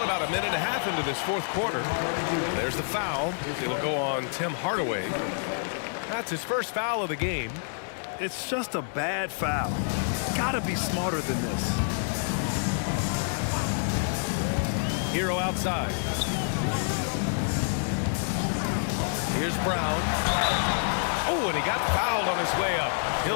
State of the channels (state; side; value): silent; right; 60 dB below the other